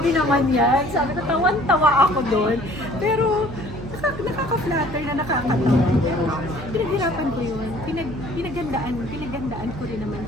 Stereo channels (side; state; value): right; noise; hum, 11 dB below the sound